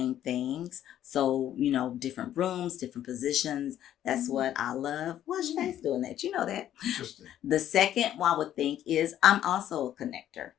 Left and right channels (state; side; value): quieter; right; 11.5 dB